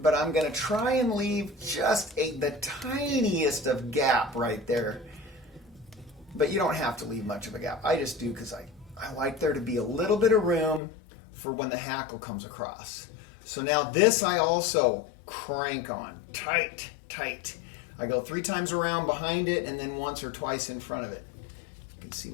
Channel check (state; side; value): drops out; right; at 10.8 s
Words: I'm going to try and leave just the tiniest of gap right there. But you don't have to leave much of a gap. I just do because I like there to be a little bit of room for when the hackle comes across. So now this I also crank on, tight, tight. I go 3 times around behind it and then once or twice in front of it. You can see